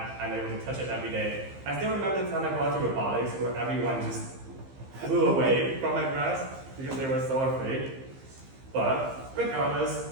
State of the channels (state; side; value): late; left; 15 ms